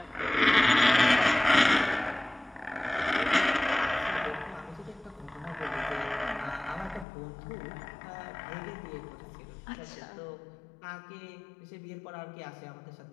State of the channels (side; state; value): right; drops out; at 7.1 s